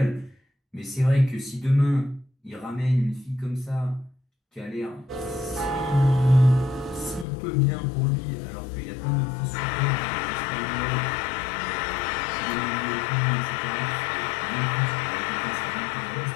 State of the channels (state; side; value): drops out; right; at 7.2 s